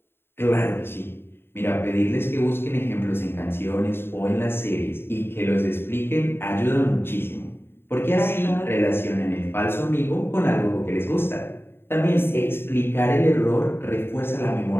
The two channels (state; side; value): late; right; 0.11 ms